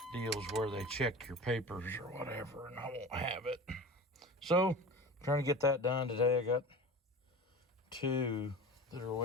deals where they check your papers or whatever, and I won't have it. So, trying to get that done today. I got two that are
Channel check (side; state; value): both; normal; correlation 0.33